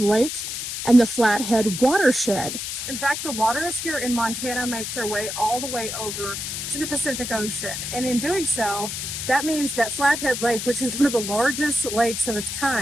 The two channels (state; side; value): noise; left; hiss, 5 dB below the sound